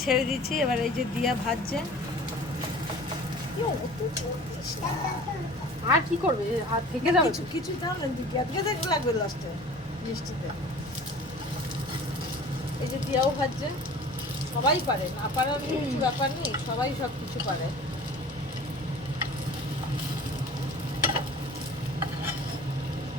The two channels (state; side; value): normal; both; correlation 0.43